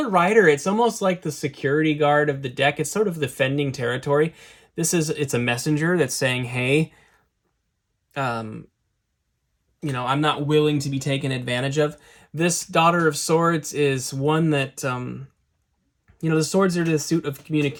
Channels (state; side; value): identical; both; correlation 1.00